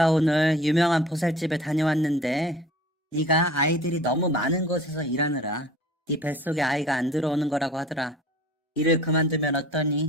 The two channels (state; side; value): normal; both; correlation 0.45